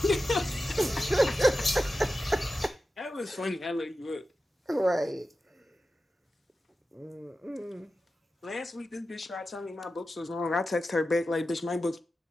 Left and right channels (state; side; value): normal; both; correlation 0.93